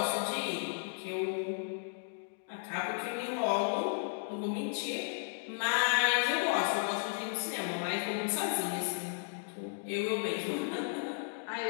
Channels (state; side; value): silent; right; digital silence